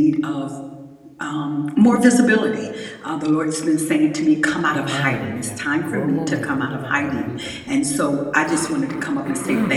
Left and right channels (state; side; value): identical; both; correlation 1.00